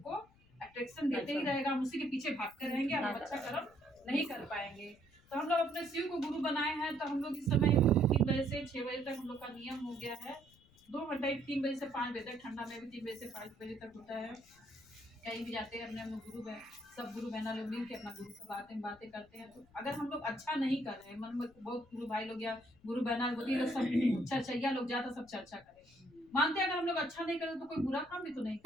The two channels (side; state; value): left; noise; rumble, 28 dB below the sound